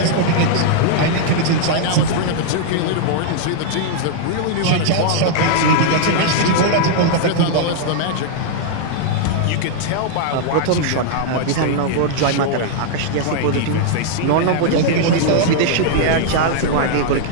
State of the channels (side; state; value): both; different; correlation -0.01